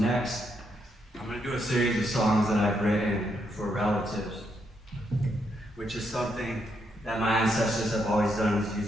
I'm going to do a series of songs that I've written for relatives, which is something that my ancestors have always done, is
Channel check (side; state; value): both; normal; correlation 0.78